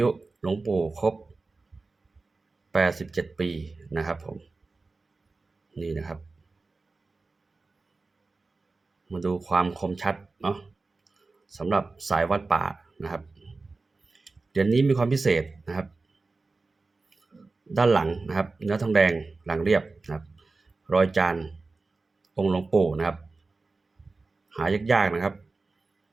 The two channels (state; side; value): quieter; left; 3.7 dB